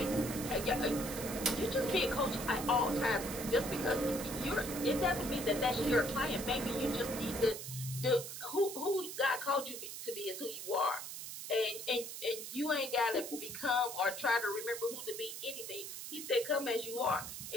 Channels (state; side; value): noise; right; hiss, 8 dB below the sound